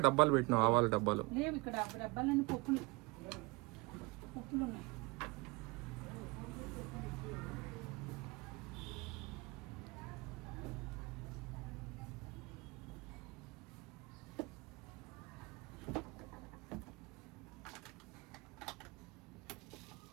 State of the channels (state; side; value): quieter; left; 25.1 dB